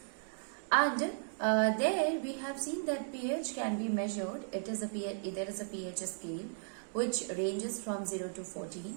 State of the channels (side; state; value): left; silent; digital silence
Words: And there we have seen that pH can be measured. There is a pH scale which ranges from 0 to